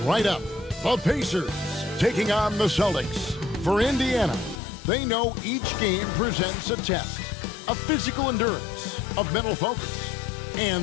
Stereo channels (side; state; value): right; drops out; at 4.6 s